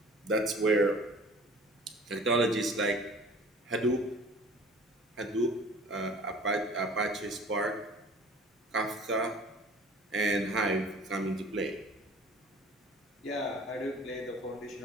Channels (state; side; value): normal; both; correlation 0.47